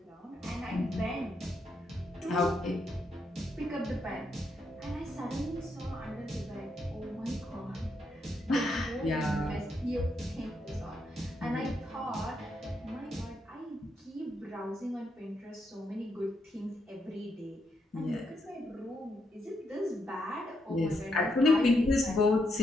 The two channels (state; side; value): normal; both; correlation 0.80